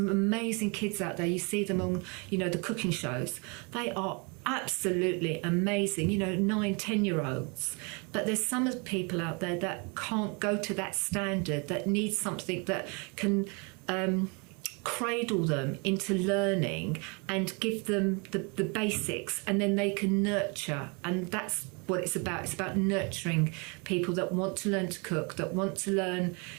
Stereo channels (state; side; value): quieter; left; 32.4 dB